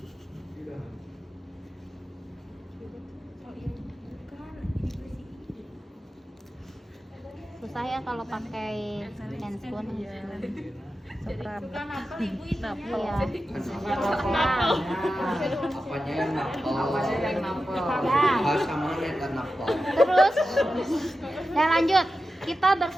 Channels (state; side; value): normal; both; correlation 0.92